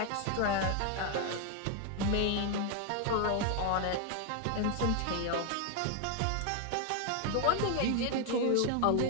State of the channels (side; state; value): both; different; correlation 0.00